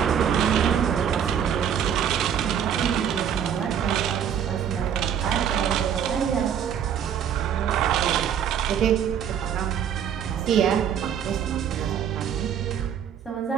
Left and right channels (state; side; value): quieter; left; 8.7 dB